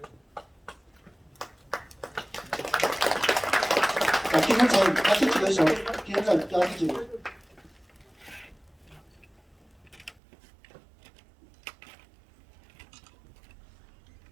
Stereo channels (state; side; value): drops out; left; at 10.2 s